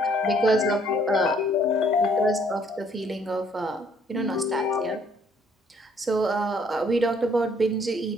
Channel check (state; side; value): normal; both; correlation 0.64